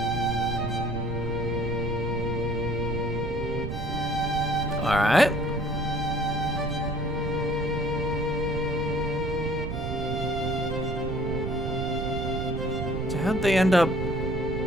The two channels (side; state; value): right; noise; rumble, 4 dB below the sound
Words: All right. So how'd they end up